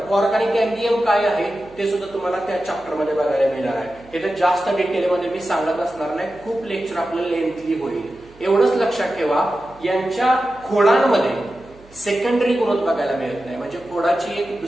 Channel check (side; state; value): right; noise; hum, 25 dB below the sound